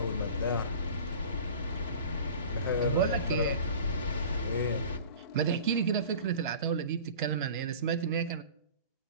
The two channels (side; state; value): both; inverted; correlation -0.40